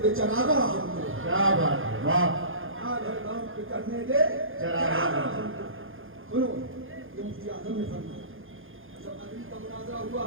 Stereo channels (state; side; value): late; left; 0.59 ms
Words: دے چراغا ہم کو، کیا بات ہے، واہ، آج ہر کام پہ کرنے دے چراغا ہم کو۔ سنو یہ مفتی اعظم نے فرمایا جب عدلی کا مناظرہ ہوا